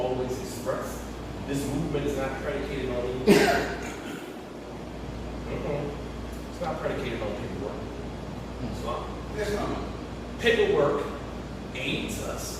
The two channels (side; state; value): both; identical; correlation 1.00